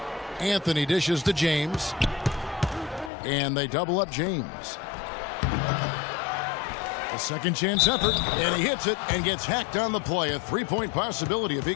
Anthony dishes to James. And they double up James. A second chance effort, and he hits it and gets hacked on the play. A 3-point possibility if he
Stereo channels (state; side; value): drops out; right; at 3.1 s